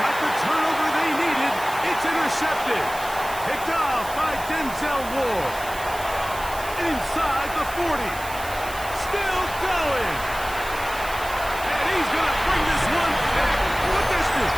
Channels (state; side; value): noise; right; hiss, 13 dB below the sound